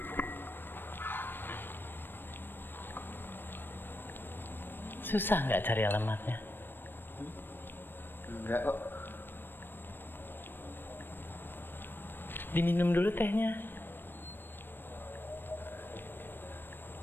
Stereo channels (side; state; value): right; late; 0.097 ms